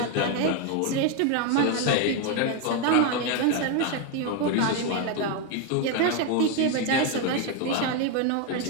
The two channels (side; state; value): both; different; correlation 0.02